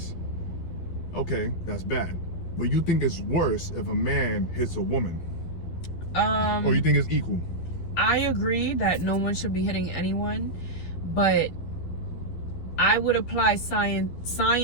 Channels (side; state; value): right; late; 12 ms